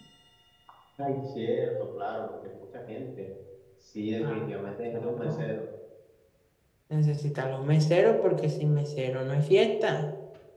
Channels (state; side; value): identical; both; correlation 1.00